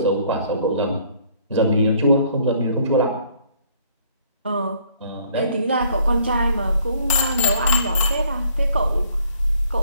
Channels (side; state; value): both; inverted; correlation -0.62